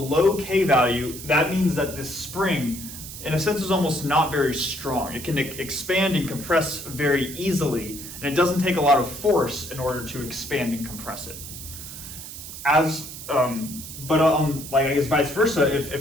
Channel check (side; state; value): right; noise; hiss, 11 dB below the sound